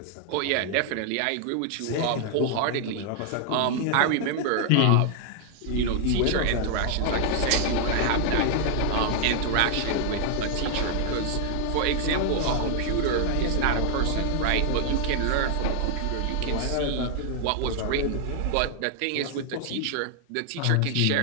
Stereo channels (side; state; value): both; different; correlation 0.00